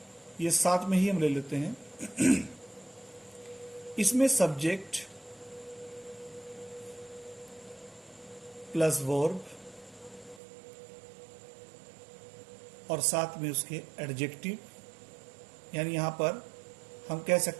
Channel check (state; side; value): drops out; left; at 10.4 s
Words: ये साथ में ही हम ले लेते हैं। इसमें सब्जेक्ट प्लस वर्ब और साथ में उसके एडजेक्टिव, यानी यहां पर हम कह